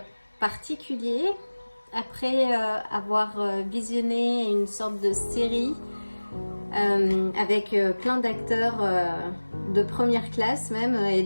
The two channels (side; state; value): both; inverted; correlation -1.00